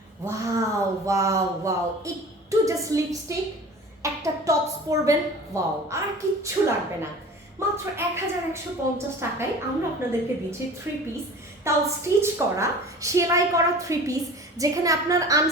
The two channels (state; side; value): normal; both; correlation 0.40